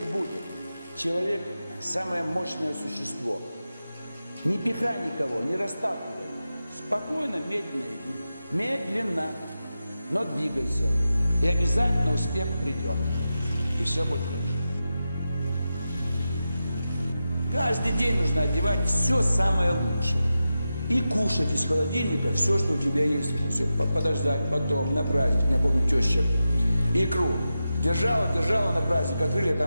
будет. Человек – самое мощное существо. Не пихай никого, не расталкивай. Спокойно, медленно иди. Медленно, но двигайся. И обязательно успех придет. И все будет хорошо. Каждый день нужно одевать все самое лучшее. И кушать из холодильника все, что у тебя есть. Все, подождать потом, на праздник. Я помню, теща икру держала на праздник, открыли, а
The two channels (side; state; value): both; inverted; correlation -0.91